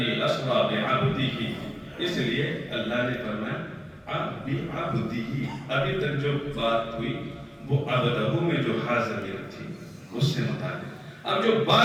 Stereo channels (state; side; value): identical; both; correlation 1.00